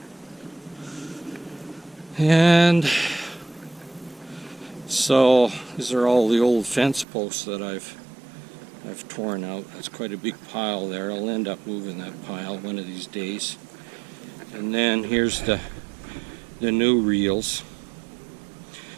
And so these are all the old fence posts that I've torn out. That's quite a big pile there. I'll end up moving that pile one of these days. And then here's the new reels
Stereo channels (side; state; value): left; drops out; at 7.1 s